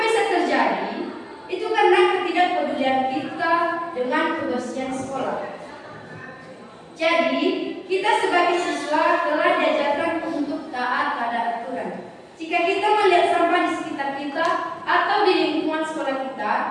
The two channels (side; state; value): both; identical; correlation 1.00